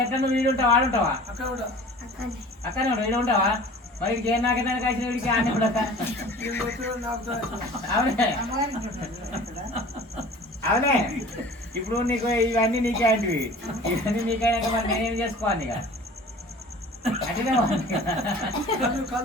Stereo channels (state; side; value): normal; both; correlation 0.44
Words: ఎట్లా నువ్వు వీడు ఉంటావా ఆడుంటావా అక్కడనే అక్కడే ఉంటావు వీడు ఉంటావా మరి వీడికి ఏం నాకేదానికి వచ్చిన వీడికి ఆనే కూడా అవునే అవునే ఇప్పుడు నీకు ఇవన్నీ నీకే అంటివి ఇవన్నీ నీకైనాక మరి నేనేం చేసుకోవాలి ఇక అట్లనే